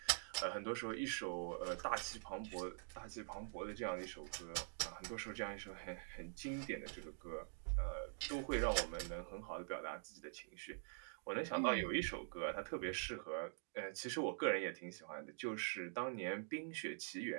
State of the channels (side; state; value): left; silent; digital silence